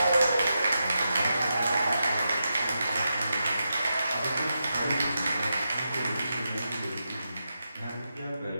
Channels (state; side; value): inverted; both; correlation -0.87